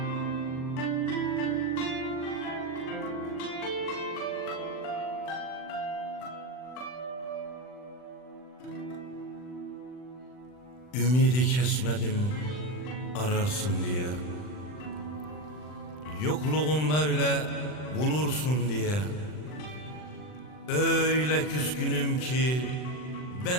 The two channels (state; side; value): late; right; 39 ms